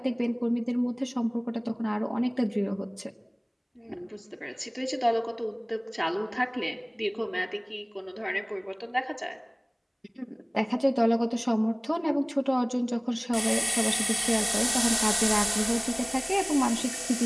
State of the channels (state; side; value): identical; both; correlation 1.00